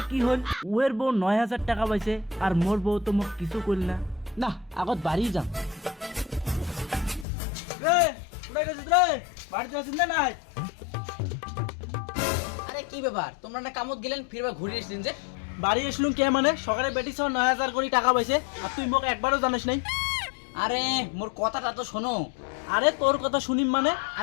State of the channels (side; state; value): right; drops out; at 7.2 s